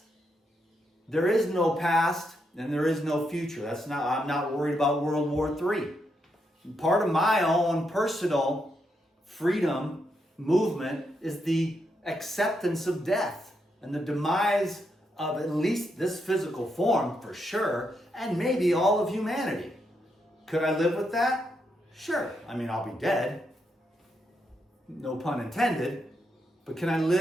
There is no past and there is no future. I'm not worried about World War III. Part of my own personal freedom movement is the acceptance of death and the demise of at least this physical form, for sure, and maybe all of humanity. Could I live with that? Sure. I'll be dead. No pun intended. But can I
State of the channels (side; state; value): both; normal; correlation 0.81